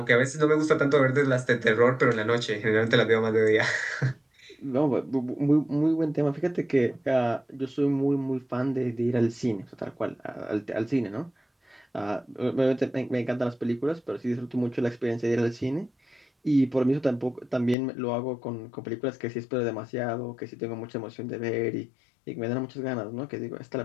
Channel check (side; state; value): right; drops out; at 17.8 s